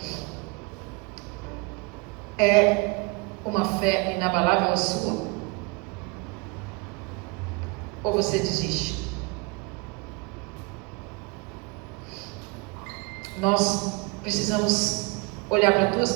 É uma fé inabalável a sua? Ou você desiste? Nós precisamos olhar para duas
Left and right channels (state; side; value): quieter; left; 28.1 dB